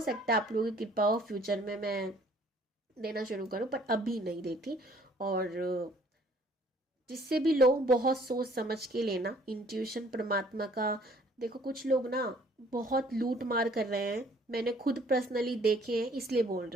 है आप लोगों की कृपा हो फ्यूचर में मैं देना शुरू करूँ, पर अभी नहीं देती। और जिससे भी लो बहुत सोच समझ के लेना, इंट्यूशन परमात्मा का। देखो कुछ लोग ना बहुत लूट मार कर रहे हैं, मैंने खुद पर्सनली देखे हैं, इसलिए बोल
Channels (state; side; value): normal; both; correlation 0.58